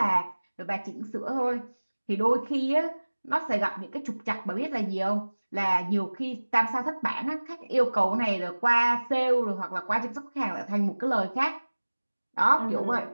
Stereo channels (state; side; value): inverted; both; correlation -1.00